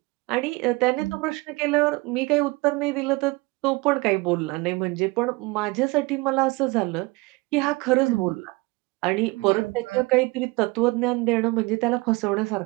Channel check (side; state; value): left; quieter; 24.2 dB